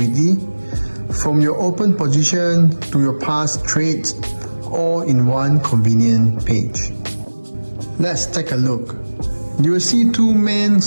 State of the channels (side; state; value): both; inverted; correlation -1.00